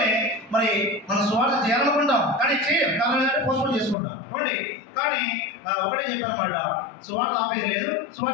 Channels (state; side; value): drops out; right; at 4.0 s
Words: మరి మనం సువార్త చేయాలనుకుంటాం, కానీ చేయం. కారణం ఏంటంటే పోస్ట్పోన్ చేసుకుంటాం. చూడండి, కానీ ఒకటే చెప్పారన్నమాట, సువార్త ఆపేది లేదు,